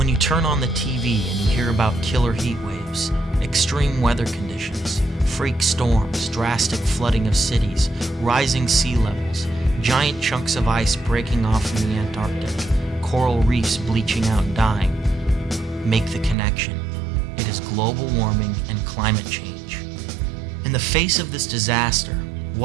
you turn on the TV and you hear about killer heat waves, extreme weather conditions, freak storms, drastic flooding of cities, rising sea levels, giant chunks of ice breaking off from the Antarctic, coral reefs bleaching out and dying, make the connection. It is global warming and climate change. In the face of this disaster,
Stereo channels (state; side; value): drops out; left; at 16.4 s